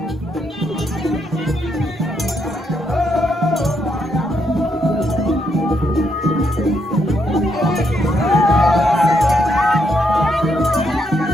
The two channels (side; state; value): both; normal; correlation 0.76